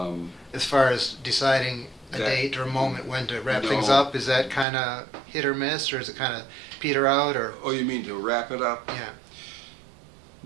As far as deciding a That- date or a moment when to wrap No. things up, is that kind of hit or miss, or is it kind of peter out, or? Oh, you mean to wrap it up? Yeah.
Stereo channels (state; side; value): drops out; left; at 4.7 s